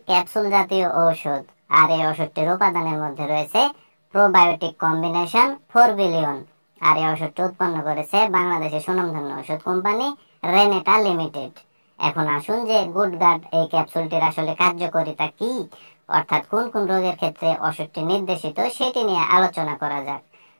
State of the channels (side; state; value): both; inverted; correlation -1.00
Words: ক্যাপসুল জাতীয় ঔষধ, আর এই ওষুধটির উপাদানের মধ্যে রয়েছে প্রোবায়োটিক কম্বিনেশন 4 বিলিয়ন। আর এই ওষুধটি উৎপন্ন করেছে বাংলাদেশের সুনামধন্য ওষুধ কোম্পানি রেনেটা লিমিটেড। এখন আসুন যে গুডগার্ড এই ক্যাপসুলটির আসলে কার্যকারিতা কি, অর্থাৎ কোন কোন রোগের ক্ষেত্রে ওষুধটি নির্দেশিত সেটি নিয়ে আলোচনা করা যাক।